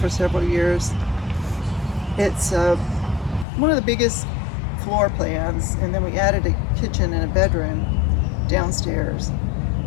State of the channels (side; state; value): right; drops out; at 3.5 s